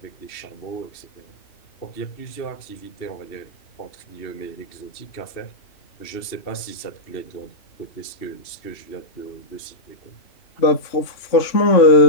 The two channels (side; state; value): right; late; 2.7 ms